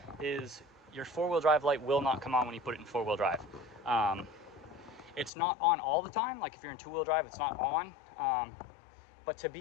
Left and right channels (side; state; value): right; drops out; at 5.3 s